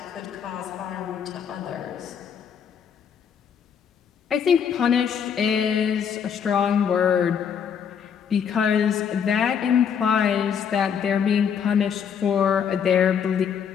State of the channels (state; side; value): quieter; right; 7.6 dB